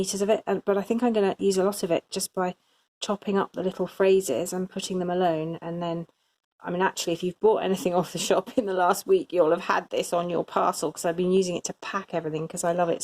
of it, but I think I'm going to use a lot of it just by chopping up the little phrases and putting them alone. And then, I mean, actually, if you've bought anything off the shop in the last week, you'll have had this on your parcel, because I've been using it to pack everything because I love it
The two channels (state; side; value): identical; both; correlation 1.00